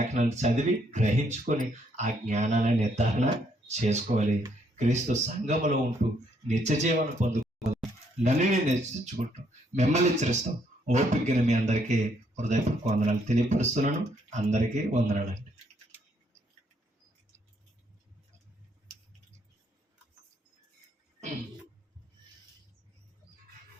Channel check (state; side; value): normal; both; correlation 0.70